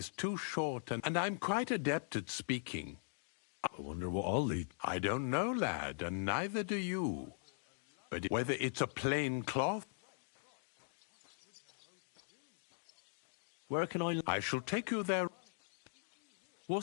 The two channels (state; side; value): silent; right; digital silence